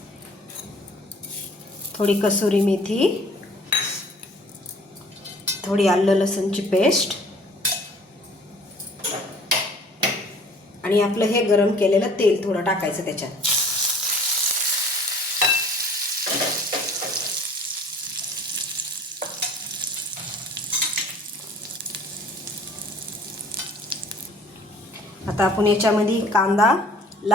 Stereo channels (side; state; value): both; normal; correlation 0.51